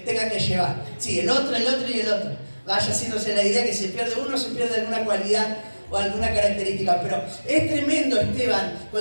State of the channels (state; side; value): inverted; both; correlation -1.00